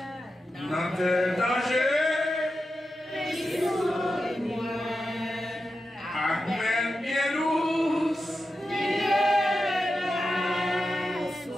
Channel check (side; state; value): both; normal; correlation 0.90